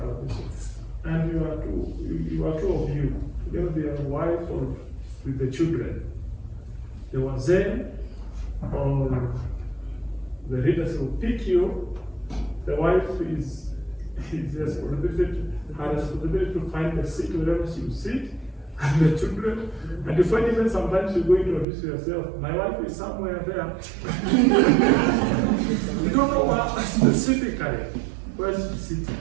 and you are two of you, together with your wife or with the children, they were there, or the leaders will pick you. The wife is her responsibility to find a seat wherever she will sit, and the children. And you find even sometimes you go introduce yourself. My wife is somewhere there. You don't know what specifically where she's sitting.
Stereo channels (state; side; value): drops out; left; at 21.7 s